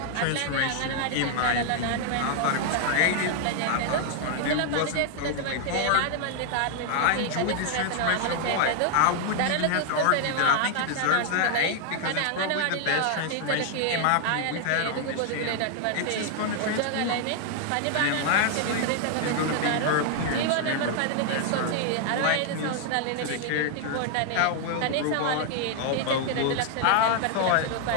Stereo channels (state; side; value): different; both; correlation 0.00